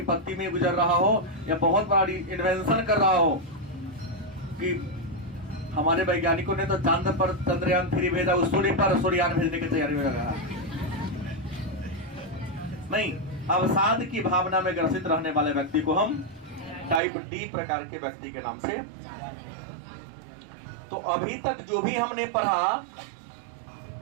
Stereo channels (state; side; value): drops out; left; at 17.0 s